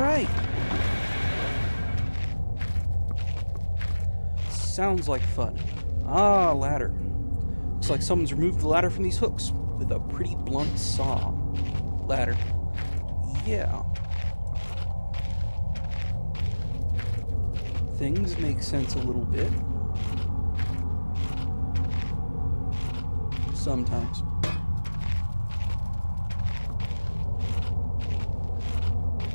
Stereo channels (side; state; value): both; inverted; correlation -1.00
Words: Sounds like fun. Ah, ladder. Looks like someone's removed the ladder from these hooks with a pretty blunt saw. Ladder. Yeah. Things make sense a little bit. Sometimes.